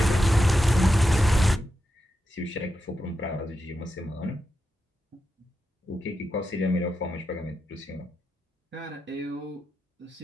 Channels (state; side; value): normal; both; correlation 0.87